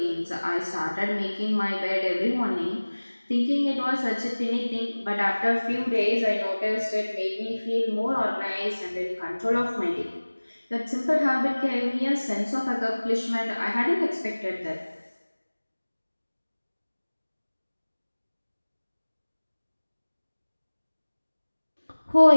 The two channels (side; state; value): both; inverted; correlation -1.00